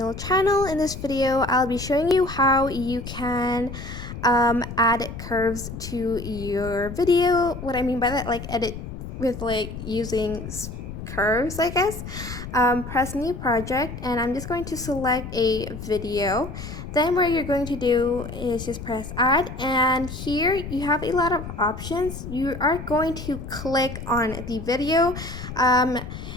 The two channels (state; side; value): noise; left; rumble, 9 dB below the sound